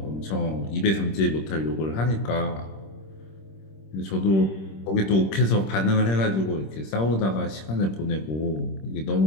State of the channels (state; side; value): late; right; 26 ms